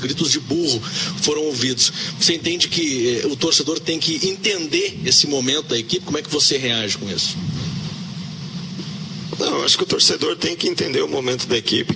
gritos de burro foram ouvidos. Você entende que o torcedor tem que entender esse momento da equipe? Como é que você reage com isso? Não, eu acho que o torcedor tem que entender o momento da equipe,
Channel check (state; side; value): identical; both; correlation 1.00